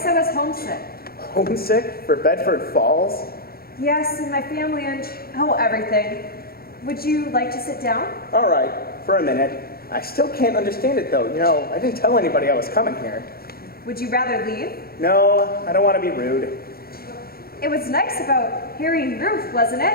I was homesick. Homesick for Bedford Falls? Yes, and my family and, everything. Would you like to sit down? All right, for a minute. I still can't understand it, though. You know, I didn't tell anybody I was coming here. Would you rather leave? No, I don't want to be rude. It was nice about Harry and Ruth, wasn't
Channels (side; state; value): right; late; 0.44 ms